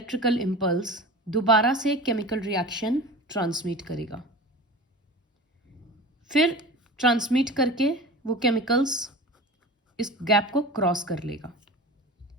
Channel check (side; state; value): both; normal; correlation 0.34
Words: इम्पल्स दोबारा से केमिकल रिएक्शन ट्रांसमिट करेगा, फिर ट्रांसमिट करके वो केमिकल्स इस गैप को क्रॉस कर लेगा।